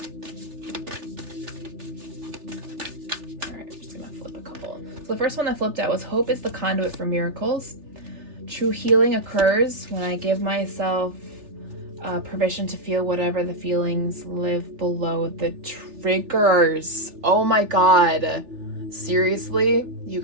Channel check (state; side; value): late; left; 3.4 ms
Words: The first one that flipped out was hope is the conduit for miracles. True healing occurs when I give myself permission to feel whatever the feelings live below the triggers. Oh my God. Seriously? You